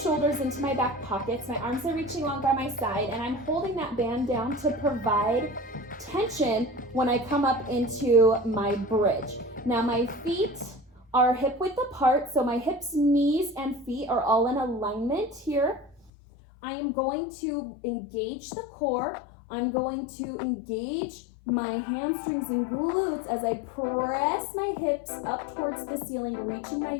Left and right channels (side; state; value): right; drops out; at 16.1 s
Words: into my back pockets, my arms are reaching along by my side, and I'm holding that band down to provide tension when I come up into my bridge. Now my feet are hip width apart, so my hips, knees, and feet are all in alignment here. I am going to engage the core. I'm going to engage my hamstrings and glutes as I press my hips up towards the ceiling, reaching my